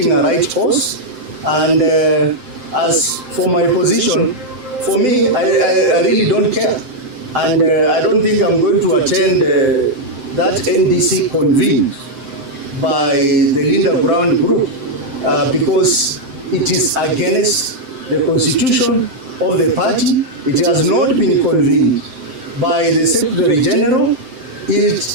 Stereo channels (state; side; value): late; left; 7.7 ms